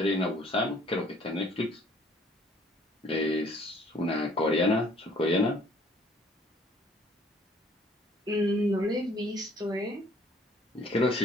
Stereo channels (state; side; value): normal; both; correlation 0.59